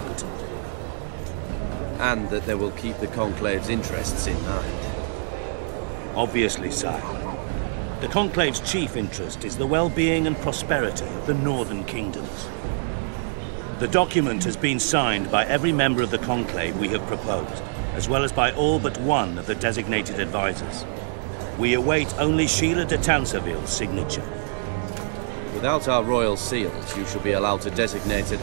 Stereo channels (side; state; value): left; silent; 61 dB below the other